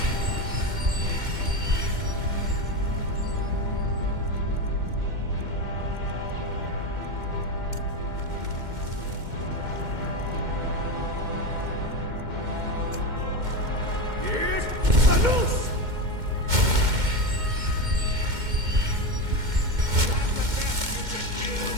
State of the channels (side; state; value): left; late; 2.1 ms